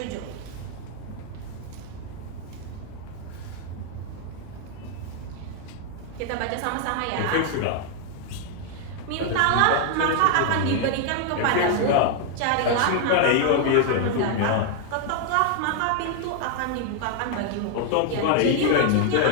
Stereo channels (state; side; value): different; both; correlation 0.00